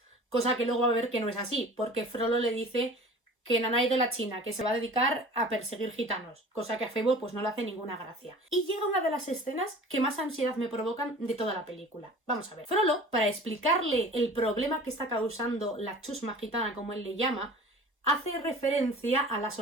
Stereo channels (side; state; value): both; normal; correlation 0.43